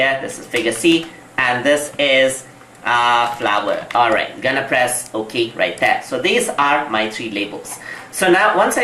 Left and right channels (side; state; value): both; identical; correlation 1.00